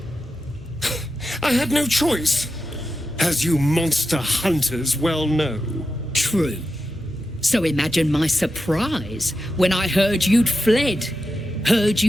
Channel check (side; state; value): both; normal; correlation 0.89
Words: I had no choice, as you monster hunters well know. True. So imagine my surprise when I heard you'd fled. Heard